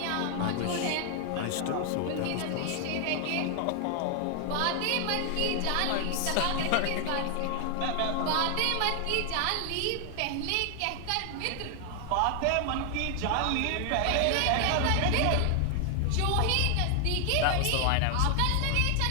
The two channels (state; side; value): different; both; correlation 0.00